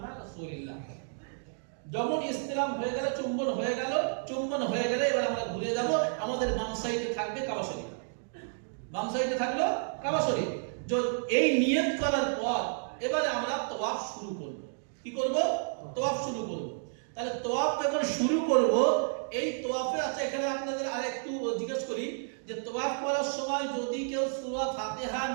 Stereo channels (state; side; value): silent; left; digital silence